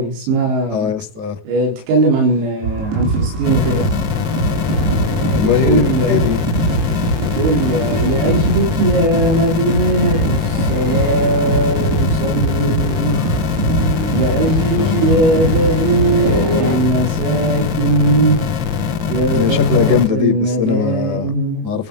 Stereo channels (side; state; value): left; late; 19 ms